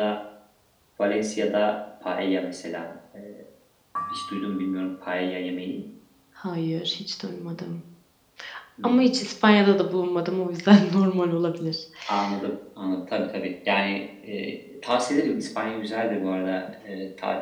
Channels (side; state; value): both; identical; correlation 1.00